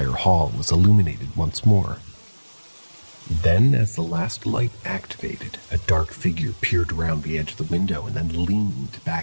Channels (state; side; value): inverted; both; correlation -1.00